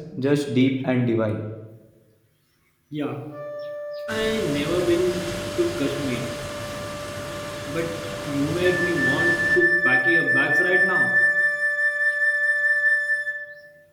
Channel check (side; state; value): both; identical; correlation 1.00